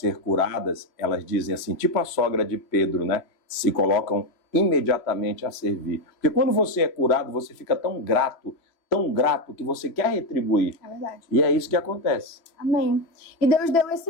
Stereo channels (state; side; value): late; right; 3.0 ms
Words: curadas, elas dizem assim, tipo a sogra de Pedro, né? Se colocam imediatamente a servir. Porque quando você é curado, você fica tão grato que você quer retribuir. É verdade. E é isso que acontece. Amém. E Deus deu esse